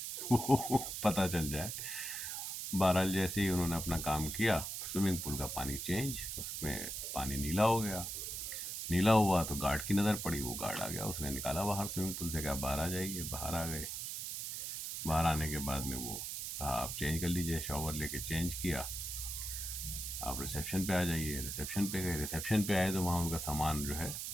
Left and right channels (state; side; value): noise; right; hiss, 5 dB below the sound